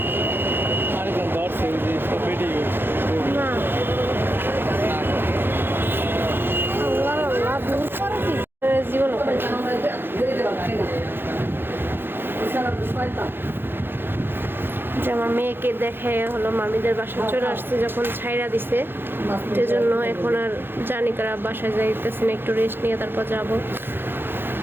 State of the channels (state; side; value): late; left; 0.10 ms